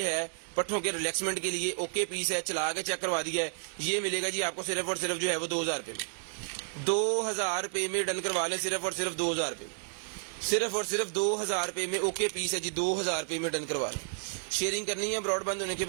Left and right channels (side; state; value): left; silent; 57 dB below the other